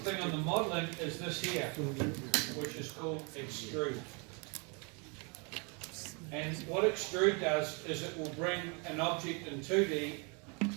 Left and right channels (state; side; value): quieter; left; 33.3 dB